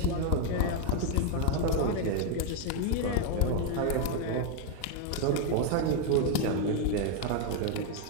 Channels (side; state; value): both; different; correlation 0.01